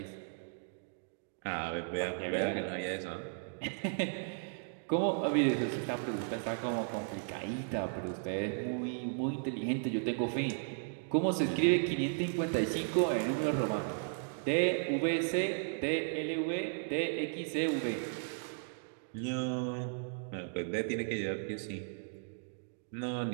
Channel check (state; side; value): silent; left; digital silence